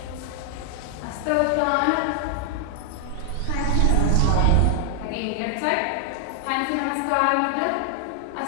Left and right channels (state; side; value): different; both; correlation 0.00